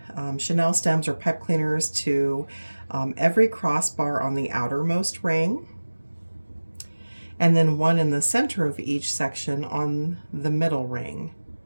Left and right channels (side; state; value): both; inverted; correlation -1.00